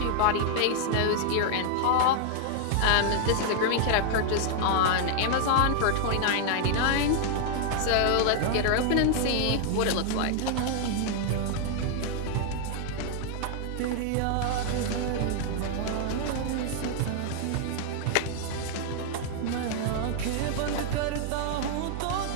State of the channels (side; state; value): both; different; correlation 0.00